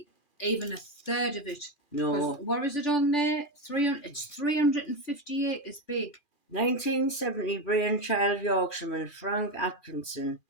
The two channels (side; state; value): right; late; 2.4 ms